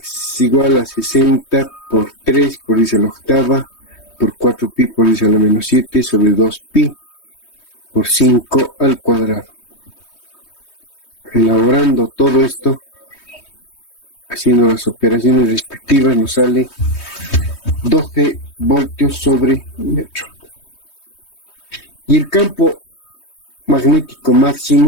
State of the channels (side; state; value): right; late; 3.2 ms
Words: igual a 60 por 3 por 10 a la octava, por 4 pi por 10 a la menos 7, sobre 2 pi por 5 al cuadrado. Elaborando todo esto, haciendo las operaciones respectivas, nos sale 12 voltios sobre metro. Y el campo magnético